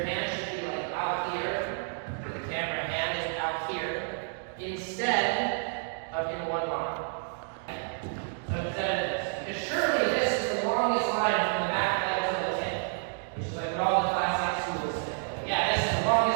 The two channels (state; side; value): silent; left; 58 dB below the other